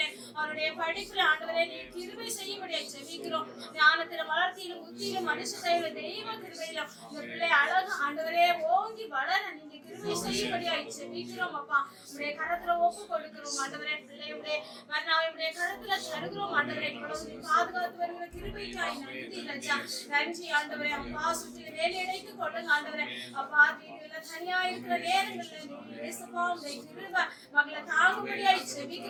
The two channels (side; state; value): both; identical; correlation 1.00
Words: அவருடைய படிப்புல ஆண்டவரே நீர் கிருபை செய்யும்படியா ஜெபிக்கிறோம். ஞானத்தில வளர்த்தியிலும் புத்தியிலும் மனுஷ தயவுல தெய்வ கிருபையிலும் இந்த பிள்ளை அழகு ஆண்டவரே ஓங்கி வளர நீங்க கிருபை செய்யும்படியா ஜெபிக்கிறோம் அப்பா. உடைய கரத்துல ஒப்பு கொடுக்கிறோம் ஆண்டவரே. பிள்ளையுடைய மன்னாவை உடைய கரத்துல தருகிறோம் ஆண்டவரே. இவ்வளவு பாதுகாத்து வருகிற கிருபைக்காய் நன்றி ராஜா. நன்றி ஆண்டவரே. அப்பா சுற்றி வேலையடைத்து கொள்ளுங்க ஆண்டவரே. அப்பா வீடுல தனியா இருக்கிற நேரங்கள்ல இயேசுப்பா உடைய கிருபை மகளை தாங்கும்படியாய்